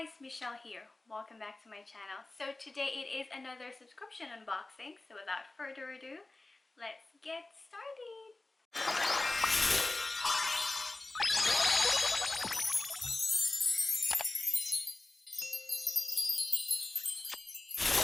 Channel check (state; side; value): quieter; right; 3.0 dB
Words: Michelle here. Welcome back to my channel. So today it is another subscription unboxing. So without further ado, let's get started.